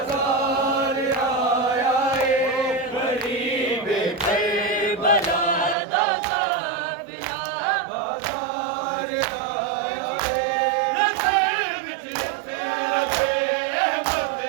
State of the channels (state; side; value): drops out; left; at 5.8 s